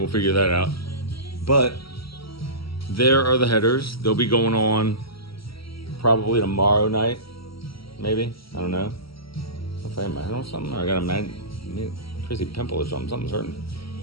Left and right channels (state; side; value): late; right; 0.75 ms